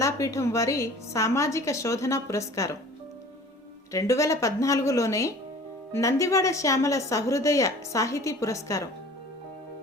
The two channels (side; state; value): both; normal; correlation 0.45